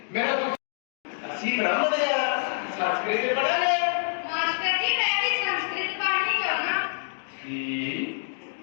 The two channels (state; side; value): silent; right; digital silence